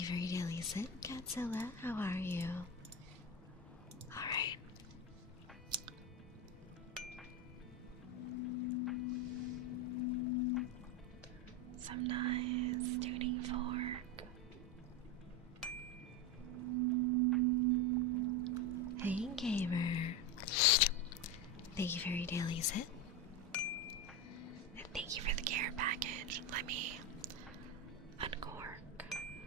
you for your daily sit, Godzilla. How are you? Alright. Some nice tuning fork. Hey, gamer. Thank you for your daily sit. And thank you for the care package. Let me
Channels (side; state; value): both; normal; correlation 0.16